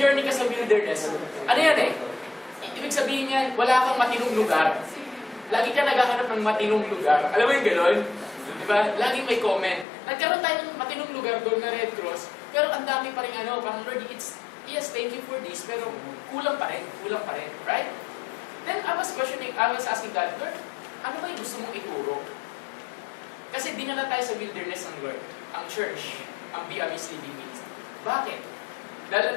ka sa wilderness, ano yan eh? Ibig sabihin niyan, wala kang matinong lugar. Lagi ka naghahanap ng matinong lugar. Alam mo yung gano'n? Diba? Laging may comment. Nagkaroon tayo ng matinong lugar doon na Red Cross, pero ang dami pa rin parang Lord, yes, thank you for this, pero kulang pa rin, right? Then I was asking God, Lord, ano ba yung gusto mong ituro? Kasi dinala tayo sa wilderness ng Lord, ang church, ang Biamis Living Ministry. Bakit? Dahil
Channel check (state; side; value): drops out; right; at 9.9 s